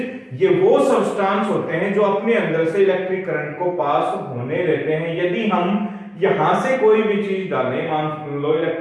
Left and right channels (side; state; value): both; identical; correlation 1.00